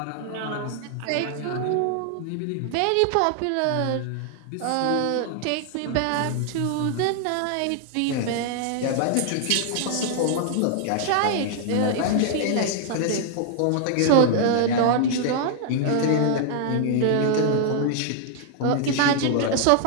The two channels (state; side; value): different; both; correlation 0.00